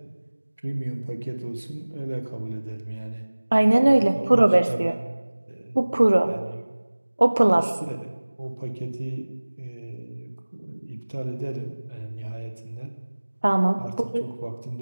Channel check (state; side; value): inverted; both; correlation -1.00